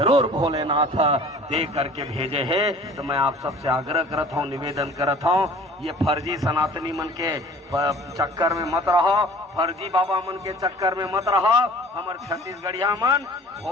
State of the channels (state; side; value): normal; both; correlation 0.47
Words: भोलेनाथ दे करके भेजे है। तो मैं आप सबसे आग्रह करत हूँ, निवेदन करत हूँ, ये फर्जी सनातनी मन के चक्कर में मत रहो, फर्जी बाबा मन के चक्कर में मत रहो। हमारे छत्तीसगढ़िया मन